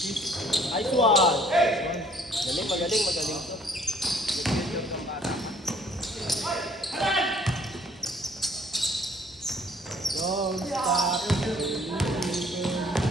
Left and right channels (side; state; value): both; normal; correlation 0.59